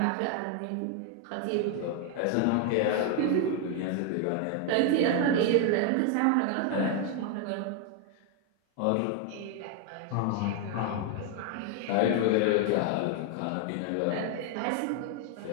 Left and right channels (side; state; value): both; different; correlation 0.00